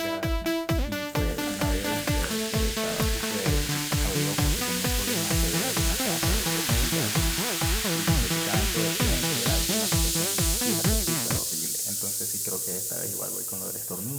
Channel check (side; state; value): both; identical; correlation 1.00